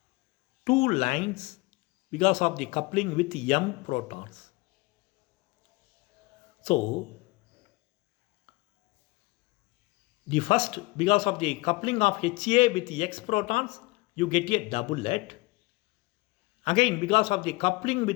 2 lines because of the coupling with M protons. So the first, because of the coupling of HA with the X protons, you get a doublet. Again, because of the coupling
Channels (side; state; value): right; quieter; 23.2 dB